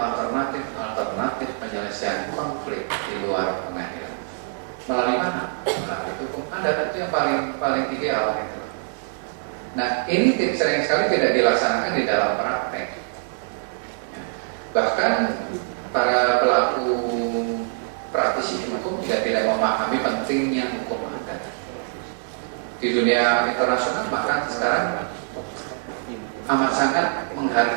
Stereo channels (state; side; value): silent; left; digital silence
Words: penyelesaian konflik di luar pengadilan. Melalui mana? Melalui hukum adat. Itu yang paling ideal gitu. Nah, ini sering sekali tidak dilaksanakan di dalam praktek. Bahkan para pelaku praktisi hukum juga tidak memahami pentingnya hukum adat. Di dunia internasional bahkan sekarang amat sangat